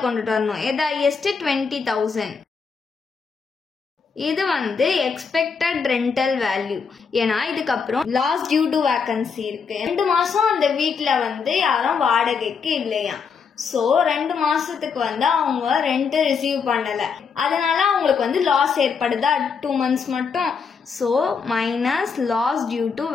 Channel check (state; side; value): quieter; right; 5.7 dB